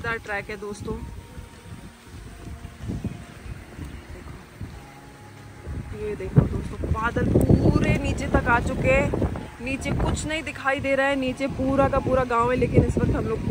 ट्रैक है दोस्तों। ये देखो दोस्तों, बादल पूरे नीचे तक आ चुके हैं। नीचे कुछ नहीं दिखाई दे रहा है, नीचे पूरा का पूरा गांव है, लेकिन इस वक्त हम लोग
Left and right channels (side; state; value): both; identical; correlation 1.00